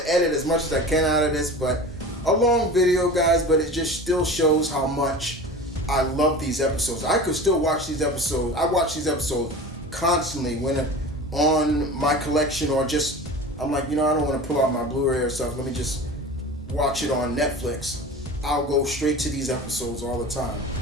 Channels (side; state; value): both; normal; correlation 0.35